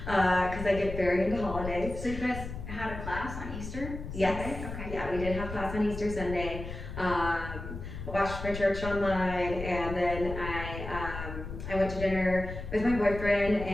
because I get very into holidays. So you guys had a class on Easter? Yes. Sunday? Okay. Yeah, we did have class on Easter Sunday. I watched my church online, and then I went to dinner with my boyfriend,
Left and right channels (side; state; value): left; noise; rumble, 8 dB below the sound